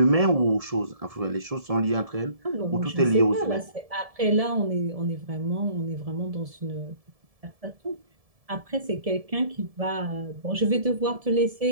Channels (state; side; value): late; left; 1.7 ms